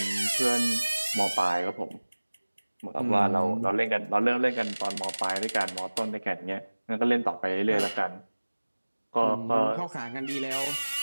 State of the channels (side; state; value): both; inverted; correlation -1.00